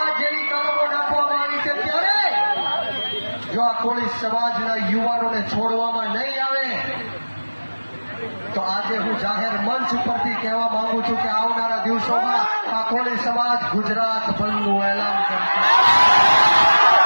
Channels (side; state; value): both; inverted; correlation -1.00